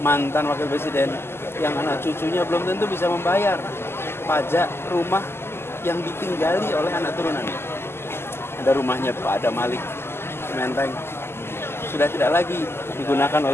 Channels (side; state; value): right; late; 0.12 ms